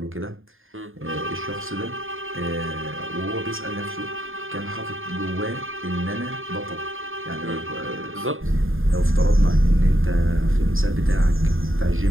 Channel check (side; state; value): left; late; 0.59 ms